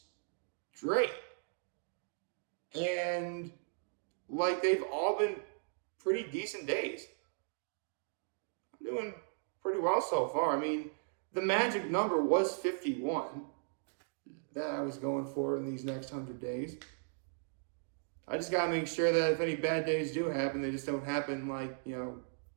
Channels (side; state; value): left; silent; digital silence